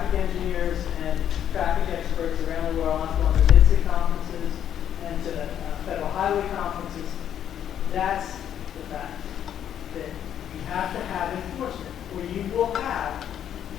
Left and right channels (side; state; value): right; quieter; 9.8 dB